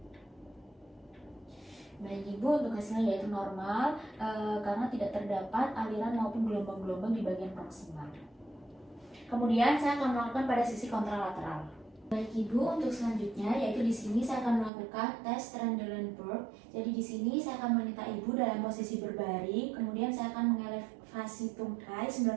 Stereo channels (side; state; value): left; drops out; at 14.7 s